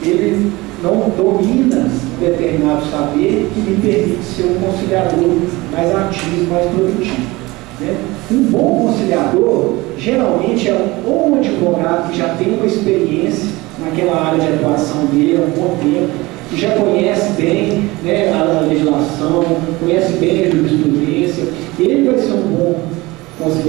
ele não domina um determinado saber que lhe permite ser um conciliador mais ativo, mais produtivo. Né? Um bom conciliador, geralmente, é ou um advogado que já tem uma experiência naquela área de atuação dele há um bom tempo, que já conhece bem, né, a legislação, conhece bem a jurisprudência. Ele vai ser um bom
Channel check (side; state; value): left; quieter; 21.5 dB